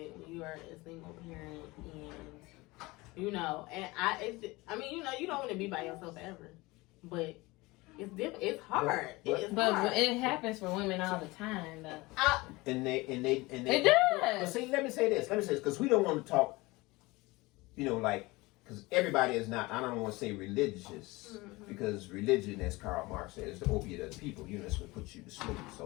when you are a single parent, and you know, and I mean, you know, you don't want to be by yourself ever, but it's hard. It's But hard. it happens for women all the time, though. and they It But does. see, let me say this because we don't want to talk. You know, like because everybody is not. I don't want to say religious because religion, as Karl Marx said, is the opiate of the people. You know, it's what puts you to sleep.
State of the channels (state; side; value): quieter; right; 22.2 dB